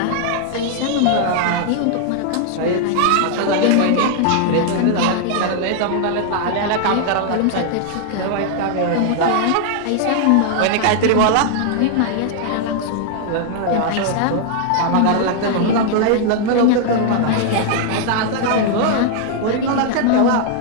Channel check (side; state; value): both; different; correlation 0.00